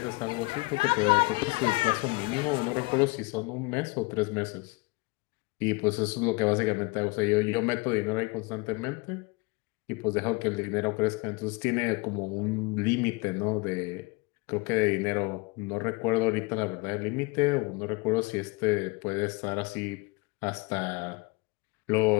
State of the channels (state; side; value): quieter; right; 26.1 dB